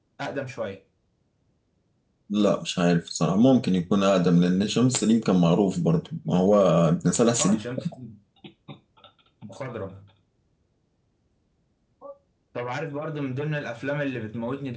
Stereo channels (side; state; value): both; identical; correlation 1.00